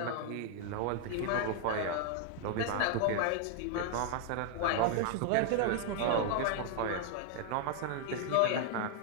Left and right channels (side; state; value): both; different; correlation 0.00